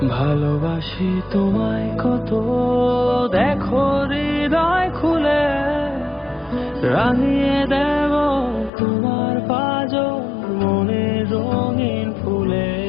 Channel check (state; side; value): drops out; right; at 8.7 s